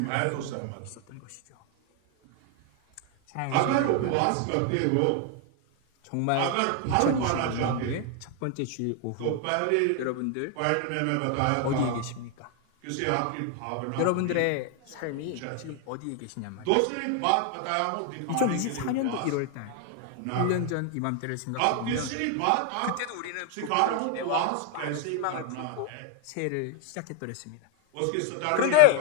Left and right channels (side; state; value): both; different; correlation 0.00